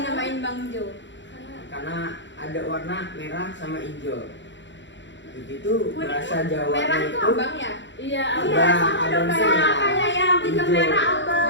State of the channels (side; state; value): right; late; 0.53 ms